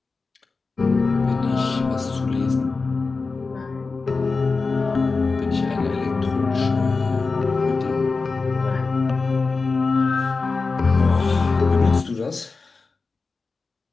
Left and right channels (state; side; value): quieter; right; 4.2 dB